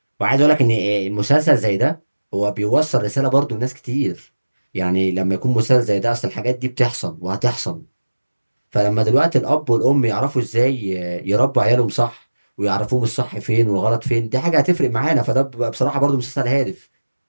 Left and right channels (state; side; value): inverted; both; correlation -1.00